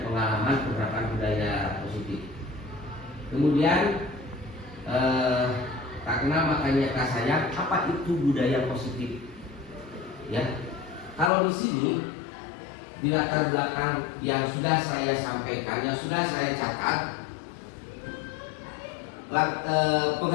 pengalaman penerapan budaya positif. Kemudian tak kenal makanya kata saya, apa itu budaya positif? Ya, kalau di sini di latar belakang yang sudah saya sampaikan, yang sudah saya catat,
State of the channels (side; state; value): right; drops out; at 11.3 s